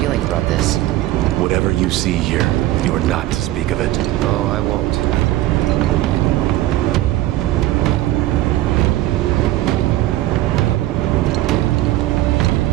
about this? Whatever you see here, you are not to speak of it. Oh, I won't.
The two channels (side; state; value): left; quieter; 15.8 dB